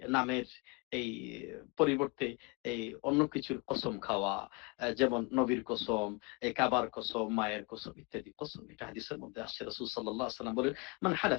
নামের এই পরিবর্তে এই অন্য কিছুর কসম খাওয়া, যেমন নবীর কসম, এই কাবার কসম, মায়ের কসম ইত্যাদি কসম, এটা হাদিসের মধ্যে আসছে। রাসূল সাল্লাল্লাহু আলাইহি ওয়াসাল্লাম বলেন, মান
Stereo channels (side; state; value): right; quieter; 29.6 dB